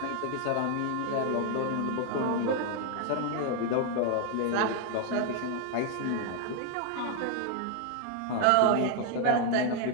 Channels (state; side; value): different; both; correlation 0.00